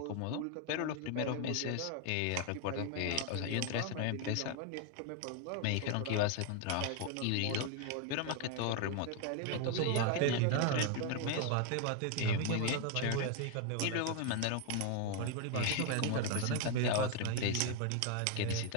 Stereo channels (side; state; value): both; different; correlation 0.01